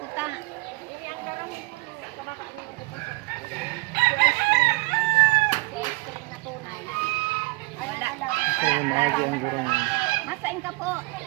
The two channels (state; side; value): quieter; left; 23.9 dB